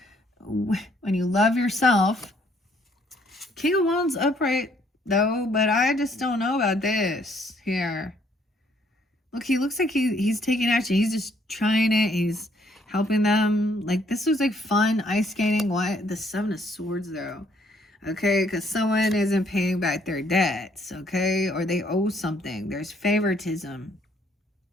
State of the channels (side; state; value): both; normal; correlation 0.66